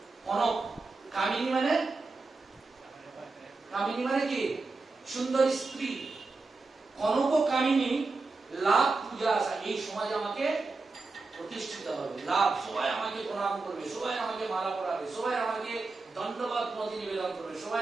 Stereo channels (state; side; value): quieter; left; 3.8 dB